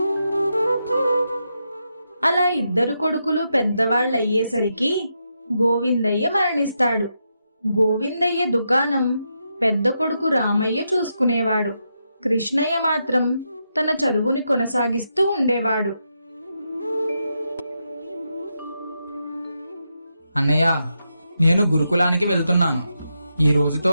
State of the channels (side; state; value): both; inverted; correlation -0.84